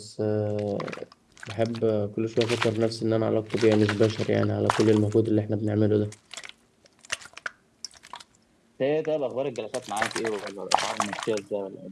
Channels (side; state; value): both; identical; correlation 1.00